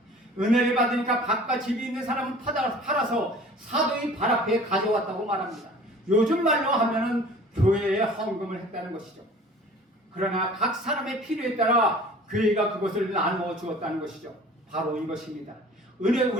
은혜를 받으니까 밭과 집이 있는 사람은 팔아서 사도의 발 앞에 가져왔다고 말합니다. 요즘 말로 하면은 교회에 헌금을 했다는 것이죠. 그러나 각 사람의 필요에 따라 교회가 그것을 나누어 주었다는 것이죠. 바로 이것입니다.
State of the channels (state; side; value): normal; both; correlation 0.46